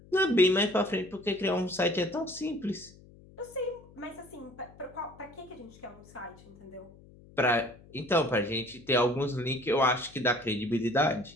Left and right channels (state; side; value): noise; left; hum, 23 dB below the sound